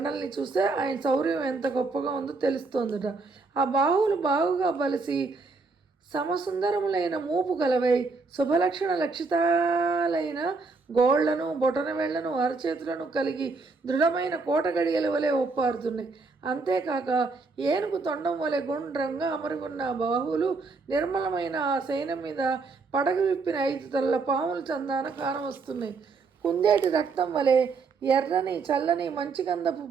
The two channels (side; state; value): left; quieter; 4.1 dB